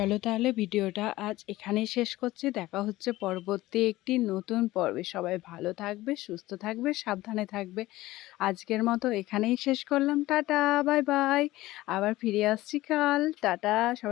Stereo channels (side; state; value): right; quieter; 17.4 dB